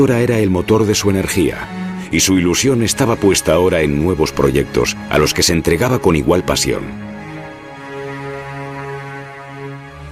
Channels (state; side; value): identical; both; correlation 1.00